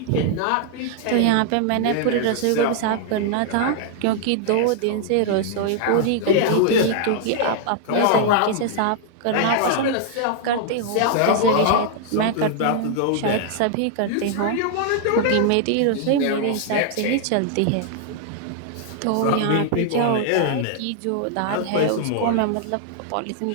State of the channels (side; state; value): both; different; correlation 0.00